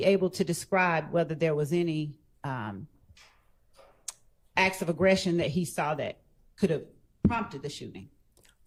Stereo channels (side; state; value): both; identical; correlation 1.00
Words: able to describe whether there was any acts of aggression that he saw that could have prompted the shooting?